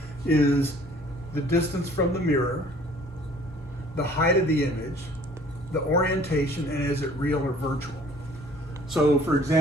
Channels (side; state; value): both; normal; correlation 0.54